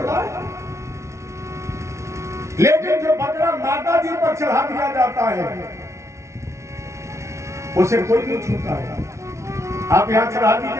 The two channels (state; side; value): late; left; 0.14 ms